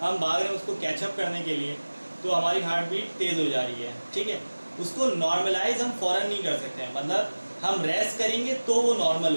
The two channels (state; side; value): inverted; both; correlation -1.00